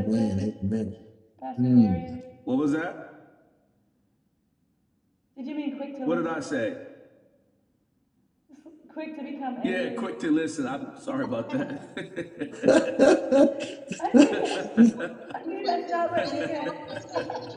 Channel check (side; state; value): both; identical; correlation 1.00